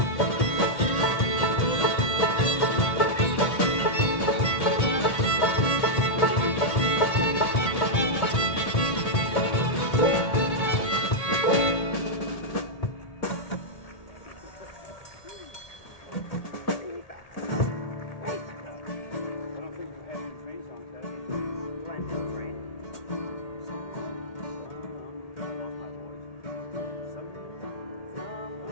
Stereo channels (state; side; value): late; right; 1.8 ms